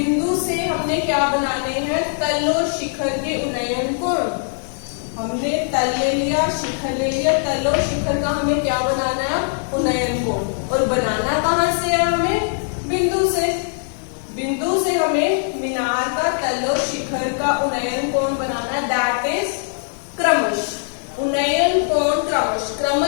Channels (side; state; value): right; silent; digital silence